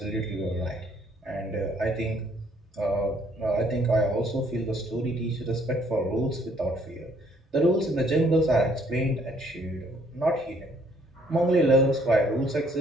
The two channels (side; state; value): both; normal; correlation 0.64